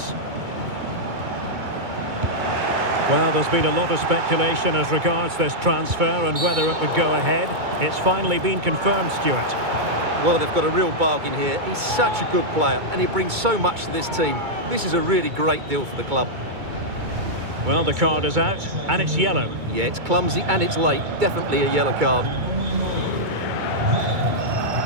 Well, there's been a lot of speculation as regards this transfer and whether it would go ahead. It's finally been confirmed, Stuart. Well, they've got a real bargain here. He's such a good player and he brings so much to this team. This is a really great deal for the club. Well, the card is out and it's yellow. Yeah, it's clumsy and it's late. Definitely a yellow card.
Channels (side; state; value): left; late; 2.2 ms